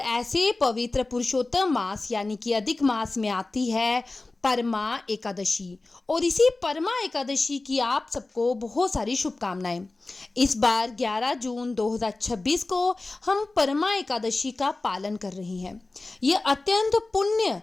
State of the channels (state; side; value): quieter; right; 3.2 dB